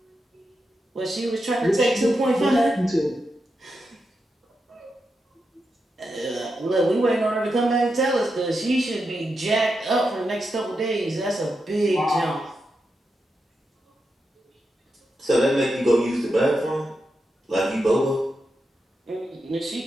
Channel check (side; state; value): both; normal; correlation 0.87